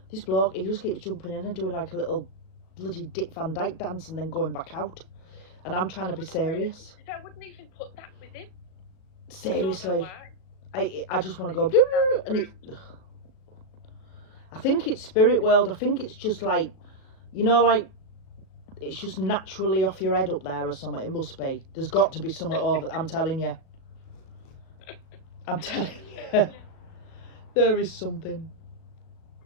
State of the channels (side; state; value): right; late; 37 ms